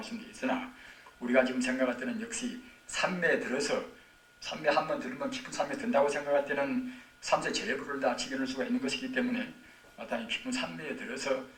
있으나 우리가 지금 생각할 때는 역시 산매에 들어서 산매 한번 들으면 깊은 산매에 든다고 생각할 때는 삼세 제불을 다 지켜낼 수가 있는 것이기 때문에 마땅히 깊은 산매에 들어서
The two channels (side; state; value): both; identical; correlation 1.00